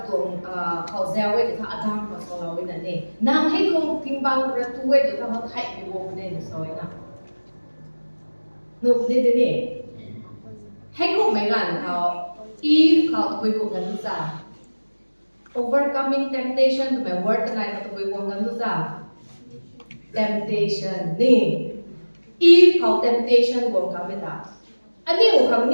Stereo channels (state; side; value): inverted; both; correlation -1.00